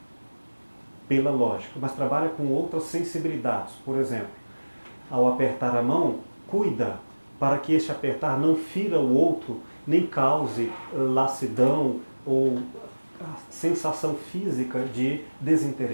pela lógica, mas trabalha com outras sensibilidades. Por exemplo, ao apertar a mão, cuida para que este apertar não fira o outro, nem cause lassidão ou sensação física de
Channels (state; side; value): inverted; both; correlation -1.00